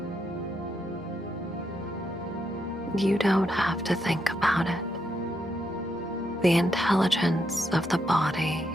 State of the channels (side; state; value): both; normal; correlation 0.80